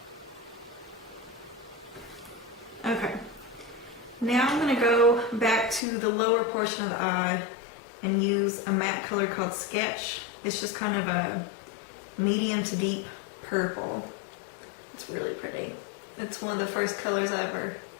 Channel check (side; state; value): right; drops out; at 5.8 s